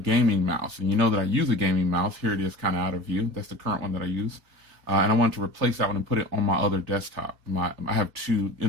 mouse, and you know that I use a gaming mouse. Here it is kind of out of view. That's the current one that I use. And I wanted to replace that one and put it on my other desktop. I have two,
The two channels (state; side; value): late; left; 3.3 ms